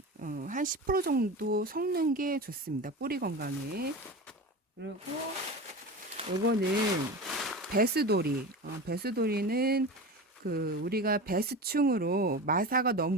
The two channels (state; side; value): normal; both; correlation 0.29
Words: 한 10% 정도 섞는 게 좋습니다. 뿌리 건강에. 그리고 이거는 배수돌이는 그 우리가 배수충으로 마사가 너무